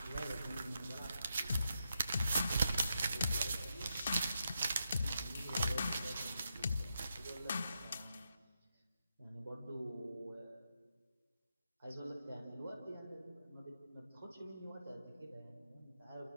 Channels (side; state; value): both; inverted; correlation -0.84